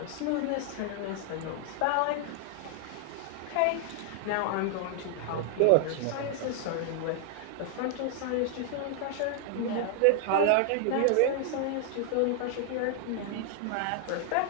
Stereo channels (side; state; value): both; different; correlation 0.00